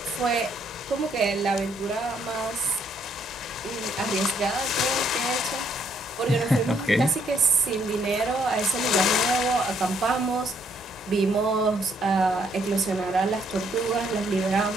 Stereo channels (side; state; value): both; normal; correlation 0.70